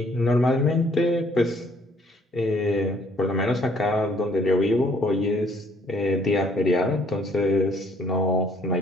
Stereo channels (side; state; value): both; normal; correlation 0.63